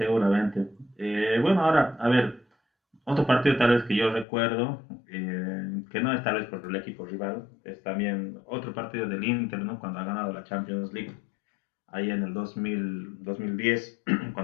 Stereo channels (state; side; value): drops out; right; at 4.2 s